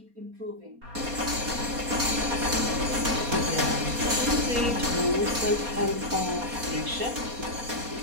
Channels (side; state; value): left; late; 4.2 ms